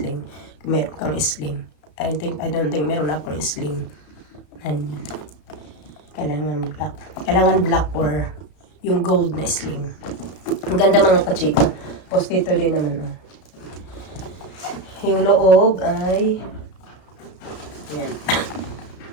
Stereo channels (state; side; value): late; right; 34 ms